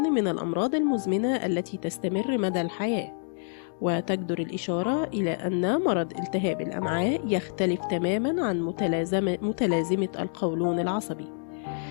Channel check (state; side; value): silent; right; digital silence